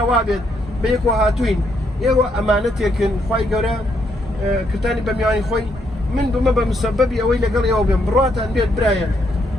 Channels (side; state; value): both; normal; correlation 0.75